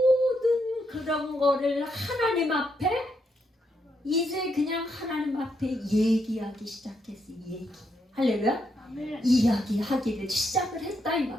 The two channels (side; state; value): both; normal; correlation 0.78